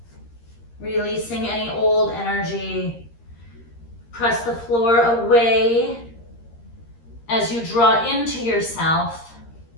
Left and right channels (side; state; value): right; late; 13 ms